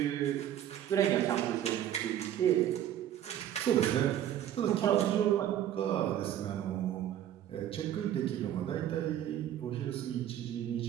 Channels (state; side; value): quieter; left; 11.2 dB